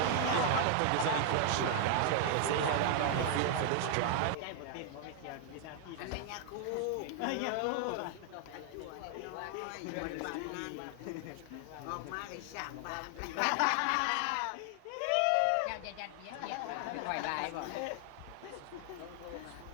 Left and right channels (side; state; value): both; different; correlation 0.00